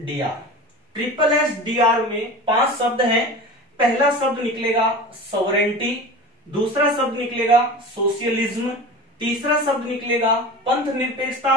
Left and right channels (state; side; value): normal; both; correlation 0.34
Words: SSDR में 5 शब्द हैं। पहला शब्द निकलेगा सॉवरेंटी, दूसरा शब्द निकलेगा सोशलिज्म, तीसरा शब्द निकलेगा पंथ